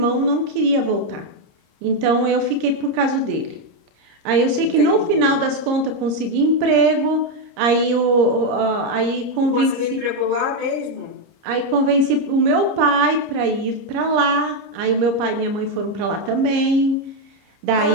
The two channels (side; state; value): left; late; 30 ms